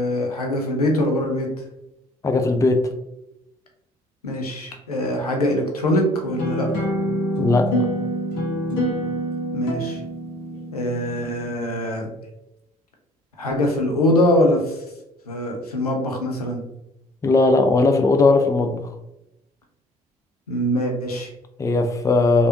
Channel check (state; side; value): normal; both; correlation 0.55